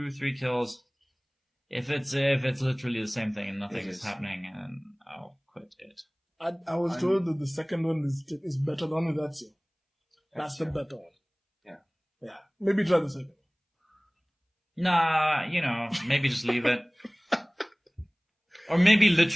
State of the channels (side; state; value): both; identical; correlation 1.00